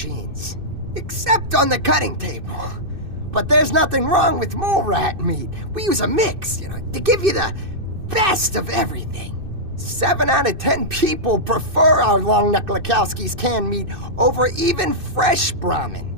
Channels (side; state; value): left; late; 2.6 ms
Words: except on the cutting table. But there's nothing wrong with mole rat meat. We use a mix, to give you the best of everything. 7 out of 10 people prefer our Longneck Lakowski's canned meat over even fresh Brahmin.